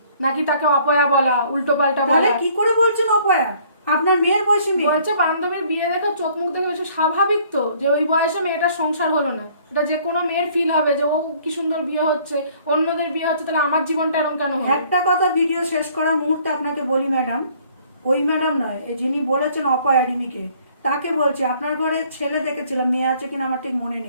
নাকি তাকে অপয়া বলা, উল্টো পাল্টা বলা। কি করে বলছেন অপয়া? আপনার মেয়ের বয়সী মেয়ে। বলছে বান্ধবীর বিয়ে দেখে চোখ মুখ দেখে বেশি স্বাভাবিক তো যে ওই বয়সে মেয়েটার সংসার হলো না। এটা যে কোনো মেয়ের ফিল হবে যে ও কি সুন্দর বিয়ে হচ্ছে, অন্যদের বিয়ে হচ্ছে, তাহলে আমার জীবনটা এরকম কেন হবে? একটা কথা ভিডিও শেষ করার মুহূর্তে আপনাকে বলি ম্যাডাম, ওই ম্যাডাম নয়, যিনি বলেছেন অপয়া রিমিকে, তাকে বলছি আপনার ঘরে ছেলে দেখেছিলাম, মেয়ে আছে কিনা আমার ঠিক মনে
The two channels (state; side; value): inverted; both; correlation -0.59